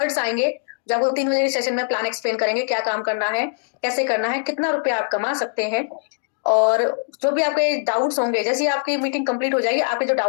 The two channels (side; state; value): right; silent; digital silence